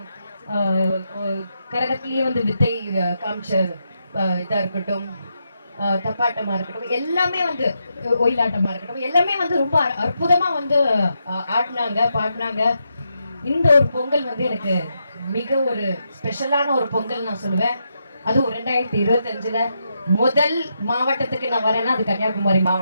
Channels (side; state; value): both; inverted; correlation -0.83